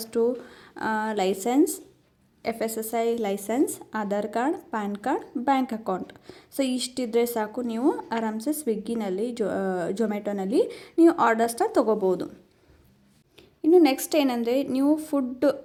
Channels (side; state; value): both; identical; correlation 1.00